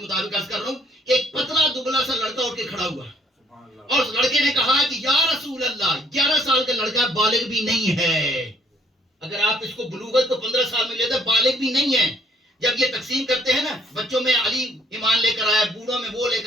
مطابق عرض کر رہا ہوں, ایک پتلا دبلا سا لڑکا اٹھ کے کھڑا ہوا, اور اس لڑکے نے کہا کہ یا رسول اللہ 11 سال کا لڑکا بالغ بھی نہیں ہے. اگر آپ اس کو بلوغت کو 15 سال میں لیتے, بالغ بھی نہیں ہے. جب یہ تقسیم کرتے ہیں نا, بچوں میں علی ایمان لے کر آئے, بوڑھوں میں وہ لے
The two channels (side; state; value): both; normal; correlation 0.64